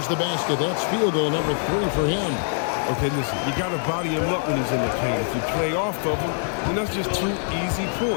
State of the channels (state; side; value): silent; right; 63 dB below the other